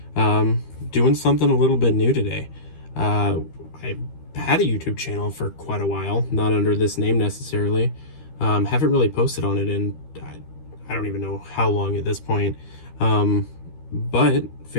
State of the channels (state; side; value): late; right; 13 ms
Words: Doing something a little bit new today. I've had a YouTube channel for quite a while, not under this name necessarily. Haven't really posted on it in I don't even know how long at this point. But